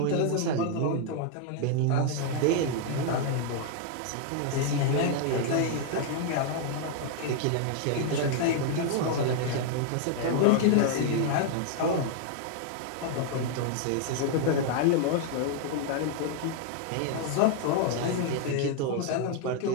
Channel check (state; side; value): different; both; correlation 0.00